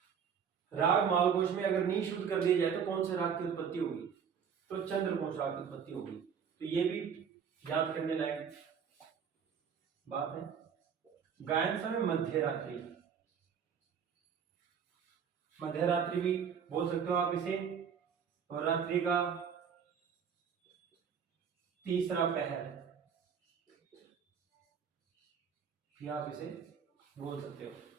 राग मालकोश में अगर नी शुद्ध कर दिया जाए तो कौन से राग की उत्पत्ति होगी, तो चंद्रकोश राग की उत्पत्ति होगी। तो ये भी याद करने लायक बात है। गायन समय मध्य रात्रि, मध्य रात्रि भी बोल सकते हो आप इसे, और रात्रि का तीसरा पहर भी आप इसे बोल सकते हो।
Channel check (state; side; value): quieter; left; 7.2 dB